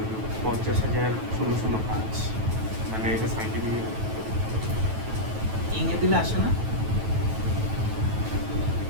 পঞ্চাশ হাজার 005 মানে এটা সাইন্টিফিক ইংরে দিলে আসে না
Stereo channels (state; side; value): late; left; 9.2 ms